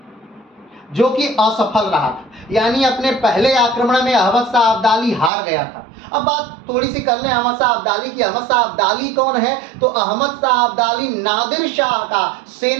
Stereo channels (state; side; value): drops out; left; at 5.3 s